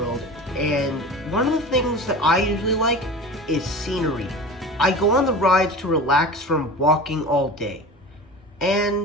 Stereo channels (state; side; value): normal; both; correlation 0.34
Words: and one of the things that I usually like is scenery. I go on the rides to relax from walking all day.